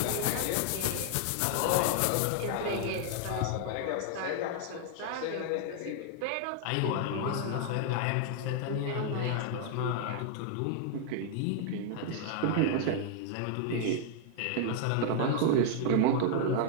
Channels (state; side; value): different; both; correlation 0.00